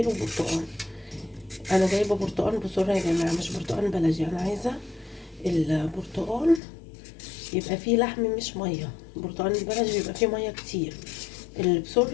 برتقال. انا جايبه برتقال بسرعه يا جماعه، مش برتقال بلدي. انا عايزه البرتقال يبقى فيه لحم مش ميه. البرتقال البلدي بيبقى فيه ميه كتير، اللي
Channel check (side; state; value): right; drops out; at 6.6 s